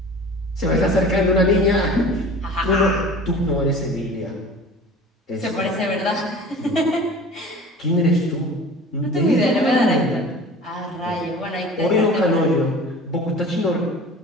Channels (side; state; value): both; normal; correlation 0.41